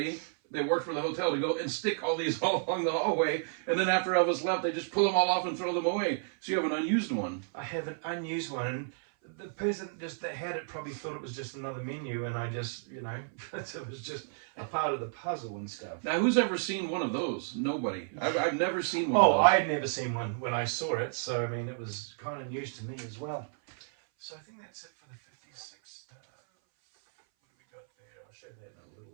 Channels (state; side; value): silent; left; 57 dB below the other